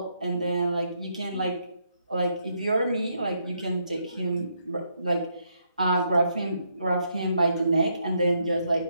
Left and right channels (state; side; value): inverted; both; correlation -0.77